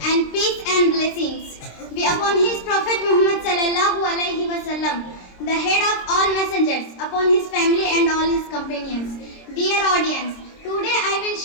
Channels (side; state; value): right; late; 26 ms